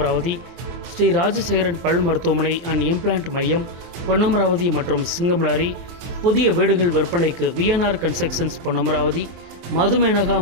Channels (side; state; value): left; late; 23 ms